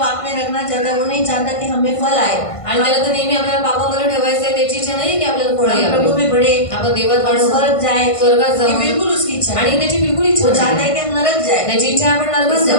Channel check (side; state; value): right; late; 1.5 ms